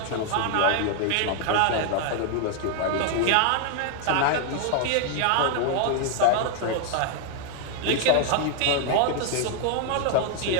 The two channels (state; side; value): different; both; correlation 0.00